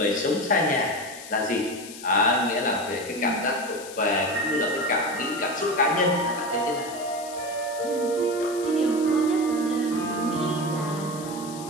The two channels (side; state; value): left; noise; hiss, 14 dB below the sound